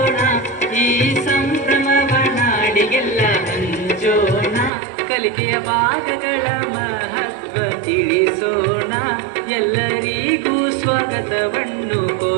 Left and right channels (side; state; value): left; drops out; at 4.7 s